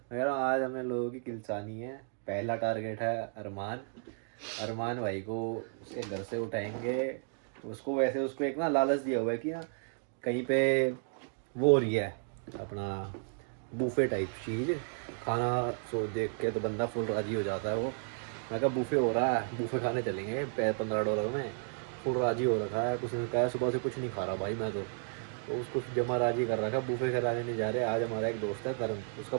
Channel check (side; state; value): left; silent; 56 dB below the other